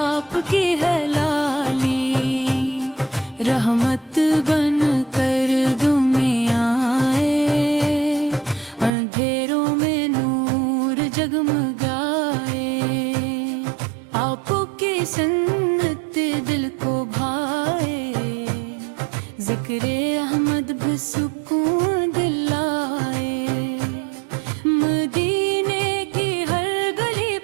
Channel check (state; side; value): drops out; left; at 8.9 s